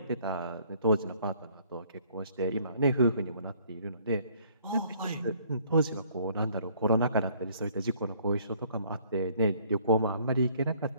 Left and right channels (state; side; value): inverted; both; correlation -0.60